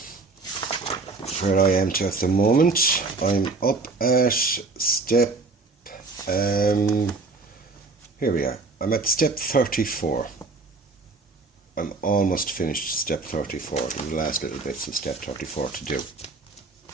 Where I am to at the moment, I'm up at step, here we are, I'm at step 34. I'm almost finished step 34, the last little bits of step 34 to do.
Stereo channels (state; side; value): quieter; left; 3.7 dB